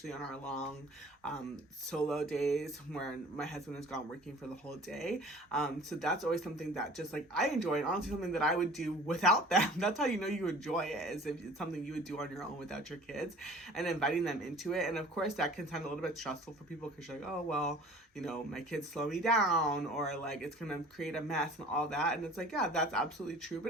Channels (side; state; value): both; normal; correlation 0.46